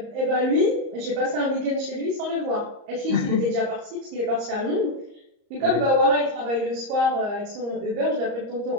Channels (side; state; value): left; late; 34 ms